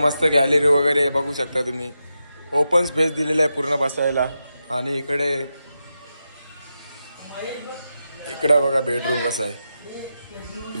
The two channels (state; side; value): inverted; both; correlation -0.88